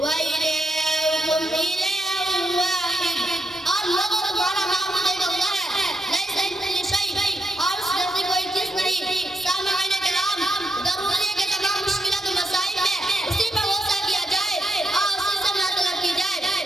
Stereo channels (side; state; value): both; normal; correlation 0.83